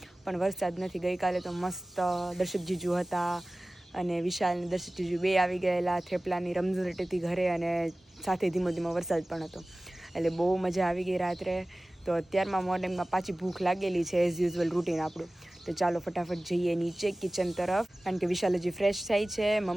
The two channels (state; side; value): normal; both; correlation 0.98